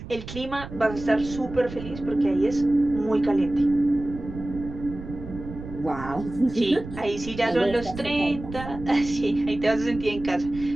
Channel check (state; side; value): noise; right; rumble, 12 dB below the sound